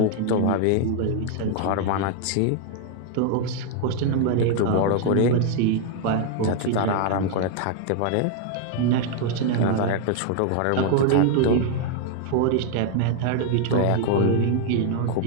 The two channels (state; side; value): different; both; correlation 0.00